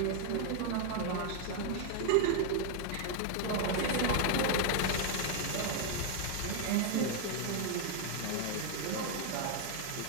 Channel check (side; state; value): both; different; correlation 0.00